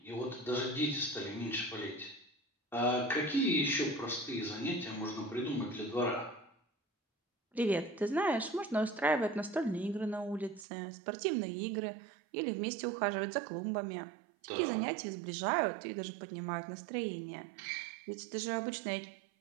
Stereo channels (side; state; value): left; drops out; at 10.7 s